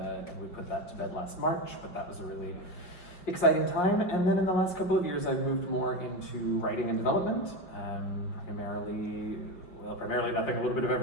we put that to bed last March, but that was a really exciting time. And then in the last couple of years, I've moved more into writing and development, primarily nothing, a little bit of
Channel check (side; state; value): right; late; 5.1 ms